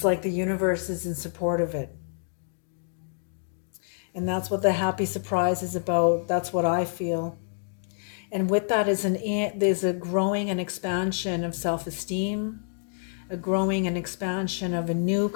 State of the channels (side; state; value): right; silent; digital silence